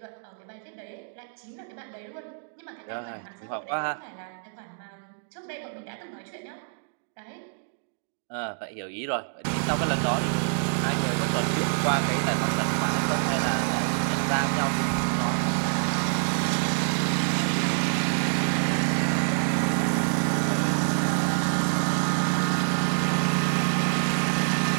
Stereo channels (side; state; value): left; silent; digital silence